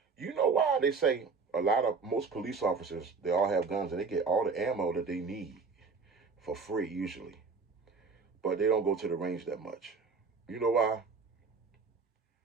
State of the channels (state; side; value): quieter; left; 4.7 dB